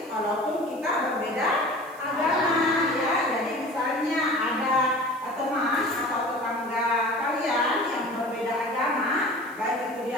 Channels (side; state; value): right; noise; hiss, 24 dB below the sound